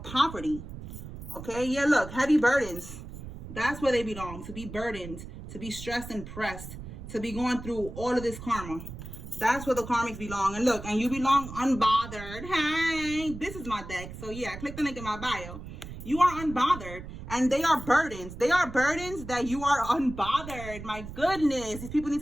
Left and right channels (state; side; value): noise; right; rumble, 11 dB below the sound